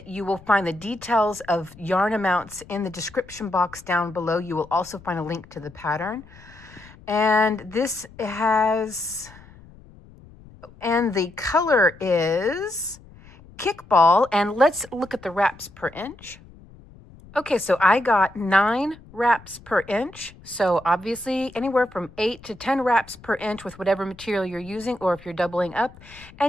you will find the details of yarn amounts in the description box down below. You will also find a link to the pattern. And this has... and the color is Kickball, and let's look at the wraps per inch. Okay, so I got 9 wraps per inch, so obviously anywhere from 8 to 10 wraps per inch with whatever material you're using, or if you're doubling up,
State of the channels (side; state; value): left; noise; rumble, 22 dB below the sound